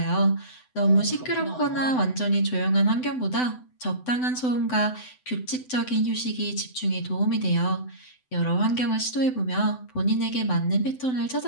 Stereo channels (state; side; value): late; right; 7.9 ms